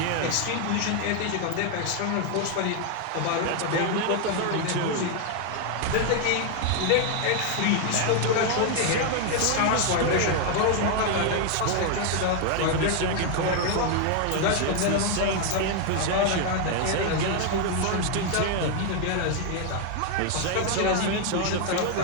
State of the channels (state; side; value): different; both; correlation 0.01